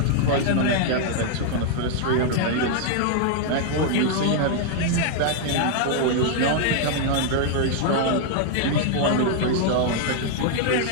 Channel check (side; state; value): both; different; correlation 0.00